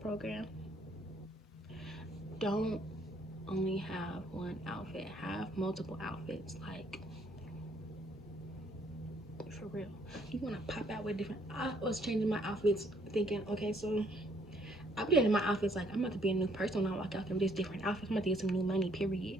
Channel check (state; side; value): normal; both; correlation 0.66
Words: Don't only have one outfit. Have multiple outfits. Like for real. You wanna pop out with different. I was changing my outfits, thinking, okay, so I'm getting my outfits like I'm about to be a new person when I walk out there with these different outfits. I'm about to get some new money. Period.